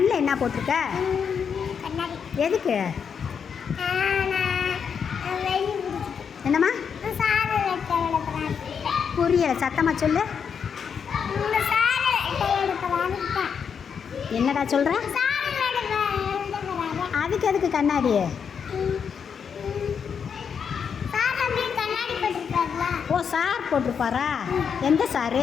என்ன போட்டிருக்க? எதுக்கு? என்னம்மா? புரியல, சத்தமாக சொல்லு. என்னடா சொல்கிற? அதுக்கு எதுக்கு கண்ணாடி? ஓ, சார் போட்டிருப்பாரா? எந்த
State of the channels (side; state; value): right; quieter; 6.8 dB